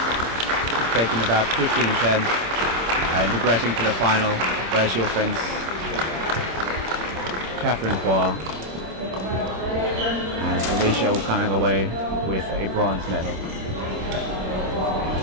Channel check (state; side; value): late; left; 26 ms